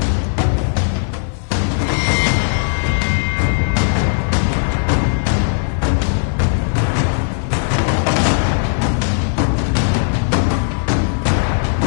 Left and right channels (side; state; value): right; silent; 62 dB below the other